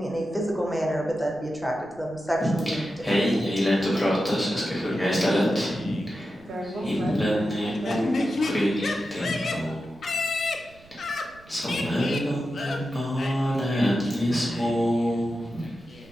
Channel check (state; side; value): noise; right; rumble, 25 dB below the sound